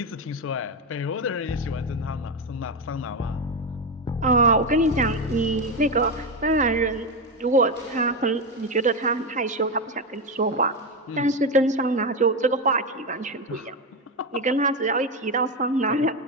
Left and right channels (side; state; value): both; normal; correlation 0.11